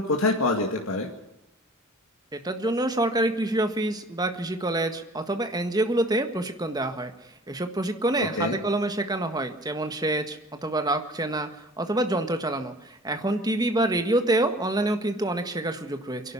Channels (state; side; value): normal; both; correlation 0.46